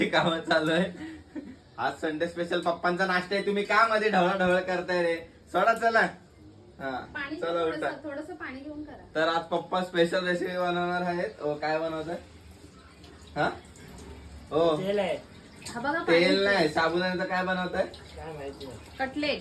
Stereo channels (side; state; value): both; identical; correlation 1.00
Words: कामं चालू आहे. आज संडे स्पेशल पप्पांचा नाश्ता आहे. तुम्ही का मध्ये ढवळाढवळ करताय रे? सोडा चला. हा चला उठा. थोडस पाणी घेऊन करा. तर आज पप्पा स्पेशल रेसिपी बनवणार आहेत. काय बनवतात? हा हो तेल नाही, साबुदाण्याचं काय बनवताय?